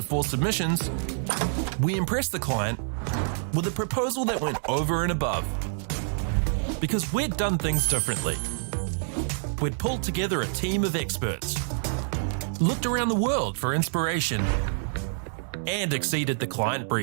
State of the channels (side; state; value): left; silent; 60 dB below the other